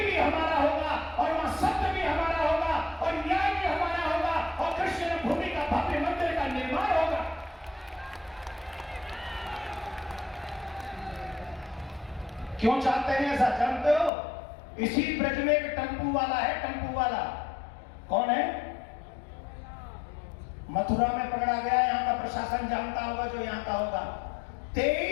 भी हमारा होगा, और वहां सत्य भी हमारा होगा, और न्याय भी हमारा होगा, और कृष्ण भूमि का भव्य मंदिर का निर्माण होगा। क्यों चाहते हैं ऐसा जानते हो? इसी ब्रज में एक टम्पू वाला है, टम्पू वाला। कौन है? मथुरा में पकड़ा गया, यहां का प्रशासन जानता होगा, जो यहां का होगा।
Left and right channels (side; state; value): right; drops out; at 14.1 s